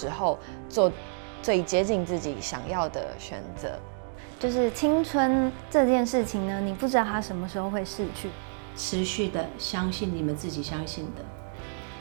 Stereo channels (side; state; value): left; silent; digital silence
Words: 候，做最接近自己想要的选择。就是青春这件事情呢，你不知道它什么时候会逝去。持续的相信你们自己相信的，